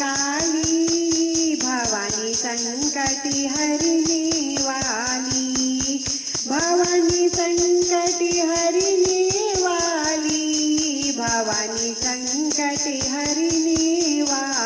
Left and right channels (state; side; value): identical; both; correlation 1.00